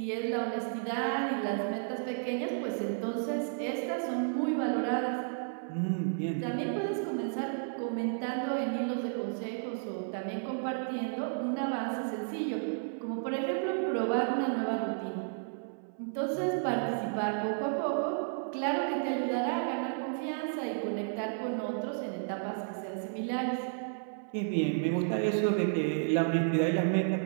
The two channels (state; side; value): silent; left; 56 dB below the other